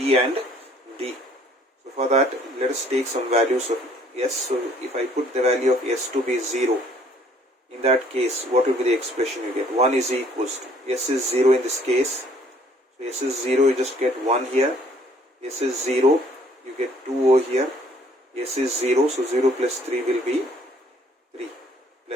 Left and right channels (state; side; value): normal; both; correlation 0.60